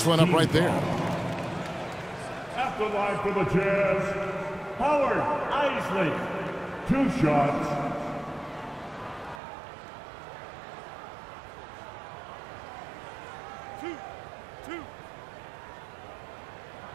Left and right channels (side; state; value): left; drops out; at 9.4 s